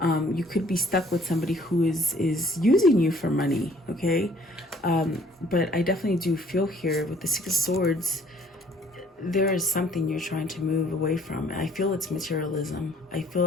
You could be stuck with somebody who is using you for money. Okay. But I definitely do feel here with the Six of Swords, there is something you're trying to move away from. I feel it's materialism. I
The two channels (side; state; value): both; normal; correlation 0.58